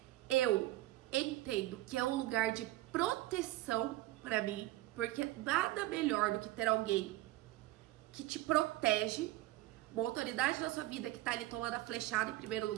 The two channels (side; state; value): left; quieter; 17.0 dB